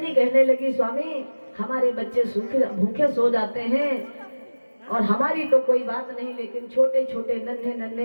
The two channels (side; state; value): both; inverted; correlation -1.00